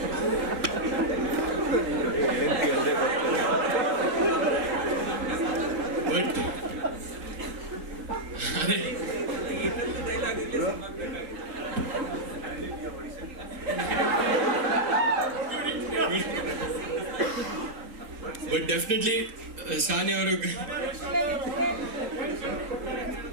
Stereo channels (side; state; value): left; late; 3.8 ms